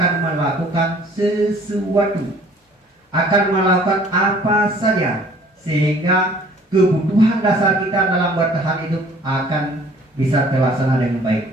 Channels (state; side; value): normal; both; correlation 0.54